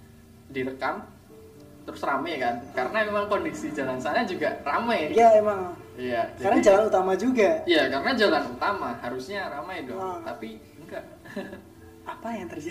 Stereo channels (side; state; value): both; identical; correlation 1.00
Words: direkam terus rame kan. Karena memang kondisi jalan sana juga rame. Iya emang. Iya. Karena jalan utama juga. Iya, karena jalan utama harusnya ramai dong. Tapi enggak. Apa yang